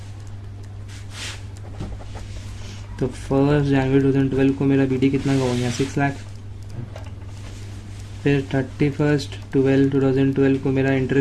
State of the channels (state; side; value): identical; both; correlation 1.00